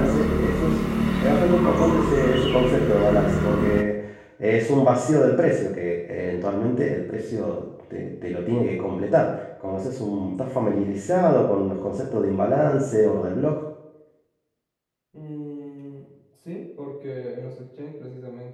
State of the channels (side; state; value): both; identical; correlation 1.00